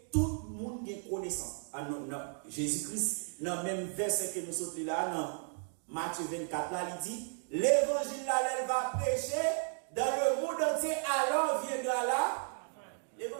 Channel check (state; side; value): silent; left; 55 dB below the other